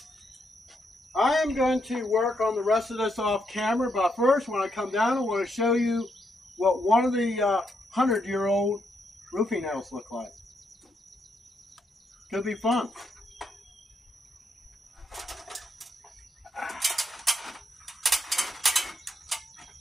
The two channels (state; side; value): normal; both; correlation 0.79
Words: I am going to work on the rest of this off camera, but first when I come down I want to show you what one of the 100-year-old roofing nails look like. Could be fun.